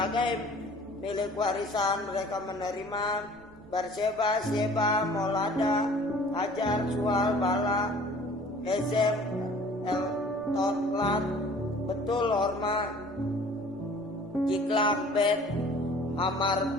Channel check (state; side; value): noise; right; rumble, 28 dB below the sound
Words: milik warisan mereka menerima Berseba, Sheba, Molada, Hajar, Sual, Bala, Hezem, Totlat, Betul, Horma, Jiklam, Bet,